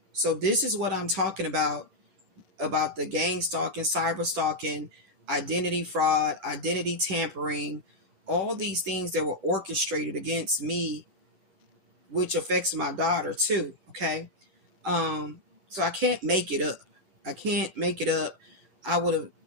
So this is what I'm talking about the gang stalking, cyber stalking, identity fraud, identity tampering, all these things that were orchestrated against me, which affects my daughter too. Okay. So I can't make it up. I would have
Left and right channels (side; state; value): left; late; 10 ms